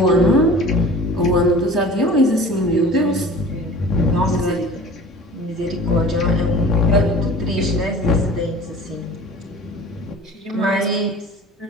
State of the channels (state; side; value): normal; both; correlation 0.43